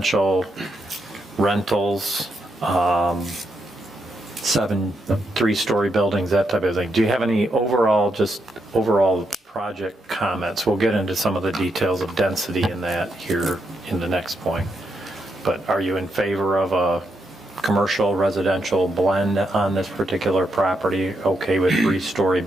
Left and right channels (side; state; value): both; normal; correlation 0.80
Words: rentals, 7 3-story buildings, that type of thing. Do you have any overall project comments? We'll get into some of the details of density in that here in the next point. But are you in favor of a commercial residential blend on this particular property? Okay with 3-story